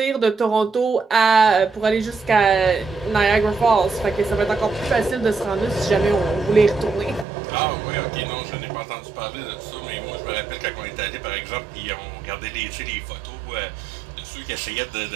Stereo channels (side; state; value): left; drops out; at 7.2 s